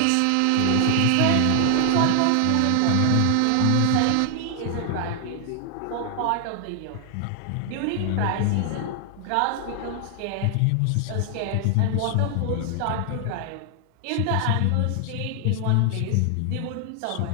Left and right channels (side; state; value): both; different; correlation 0.00